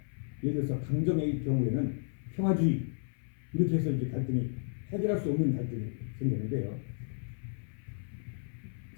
예를 들어서 강정의 경우에는 평화주의 이렇게 해서 이제 갈등이 해결할 수 없는 갈등이 생기는데요.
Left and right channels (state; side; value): silent; right; 56 dB below the other